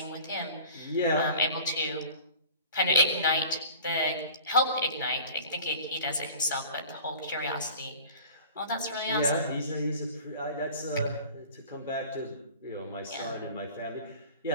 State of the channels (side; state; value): both; inverted; correlation -0.42